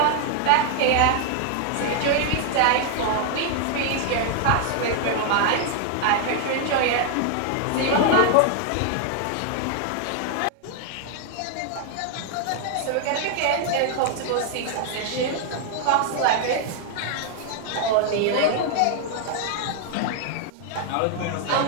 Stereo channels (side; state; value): both; different; correlation 0.00